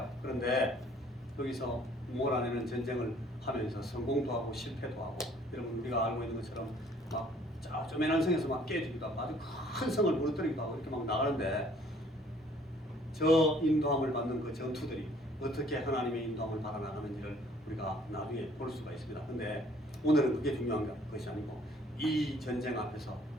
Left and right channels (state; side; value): normal; both; correlation 0.58